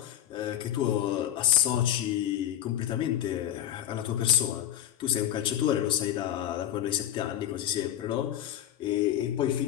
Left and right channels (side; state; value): right; quieter; 11.6 dB